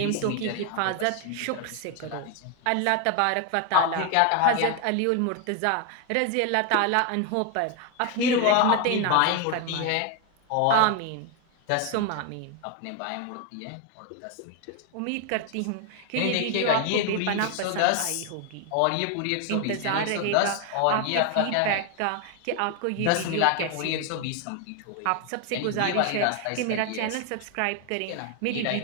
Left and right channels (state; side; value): different; both; correlation 0.01